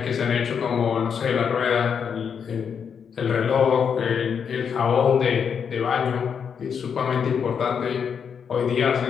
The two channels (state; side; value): quieter; right; 7.0 dB